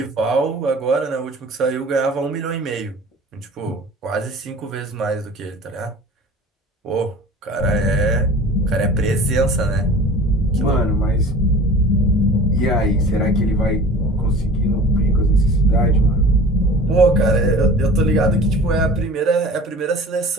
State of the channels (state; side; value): normal; both; correlation 0.42